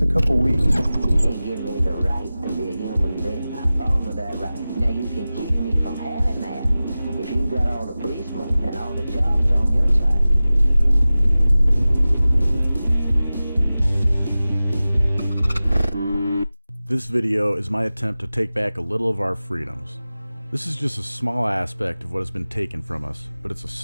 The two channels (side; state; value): both; inverted; correlation -0.97